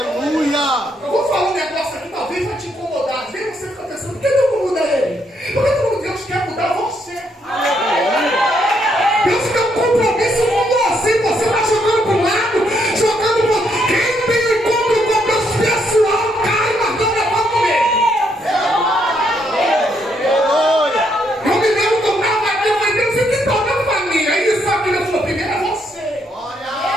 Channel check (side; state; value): both; normal; correlation 0.74